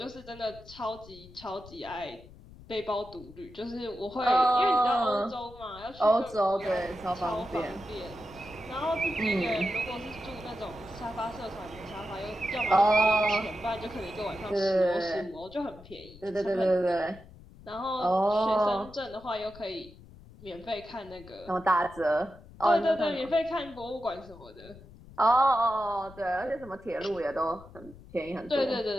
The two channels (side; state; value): left; noise; rumble, 20 dB below the sound